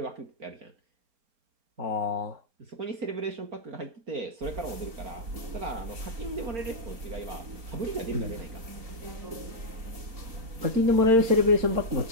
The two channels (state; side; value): late; left; 4.3 ms